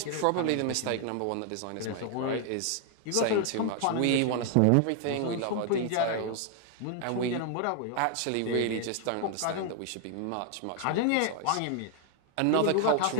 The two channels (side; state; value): both; different; correlation 0.00